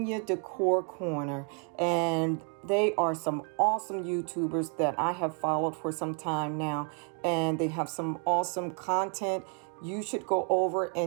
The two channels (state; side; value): quieter; left; 39.2 dB